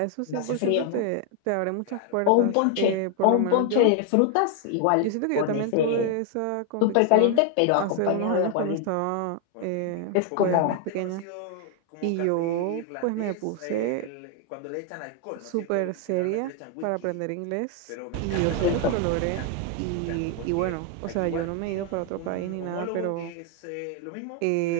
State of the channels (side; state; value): both; different; correlation 0.00